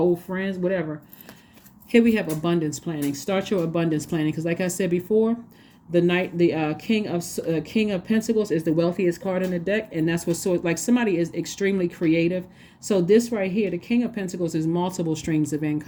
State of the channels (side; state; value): both; identical; correlation 1.00